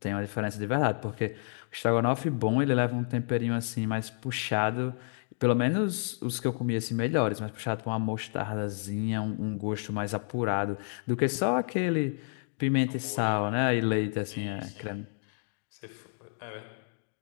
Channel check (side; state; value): right; silent; digital silence